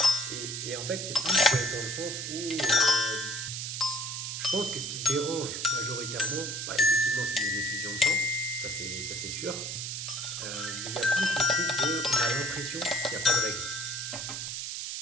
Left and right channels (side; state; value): right; noise; hiss, 5 dB below the sound